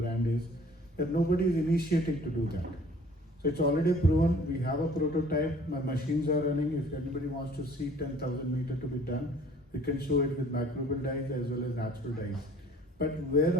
is that nobody is initiating to do that. So it's already proven. We have a prototype. My machines are running. If anybody wants to see 10,000 meter to be done, We can show it with microbial dyes as well as natural dyes. But where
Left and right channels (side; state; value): both; normal; correlation 0.53